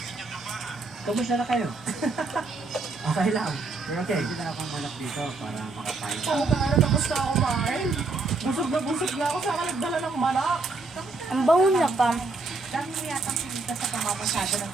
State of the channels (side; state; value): left; quieter; 3.6 dB